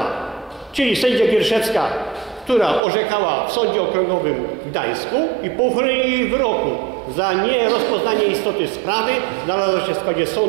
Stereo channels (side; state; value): left; drops out; at 2.8 s